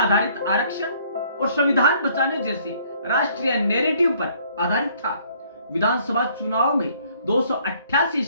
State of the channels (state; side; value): inverted; both; correlation -0.61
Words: आरक्षण और संविधान बचाने जैसे राष्ट्रीय नैरेटिव पर आधारित था। विधानसभा चुनाव में 288